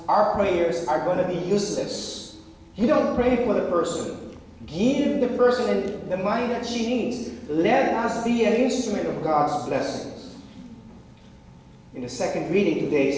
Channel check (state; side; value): identical; both; correlation 1.00